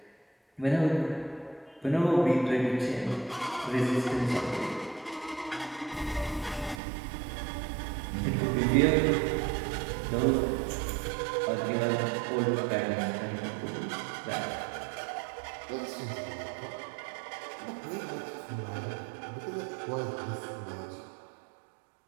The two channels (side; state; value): left; drops out; at 6.8 s